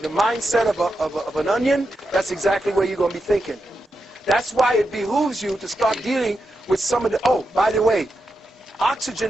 mindset of an onion, that's exactly where you're going to be thinking. That's why it behooves you to start dealing with some of the, oh, by the way,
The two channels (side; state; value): both; normal; correlation 0.87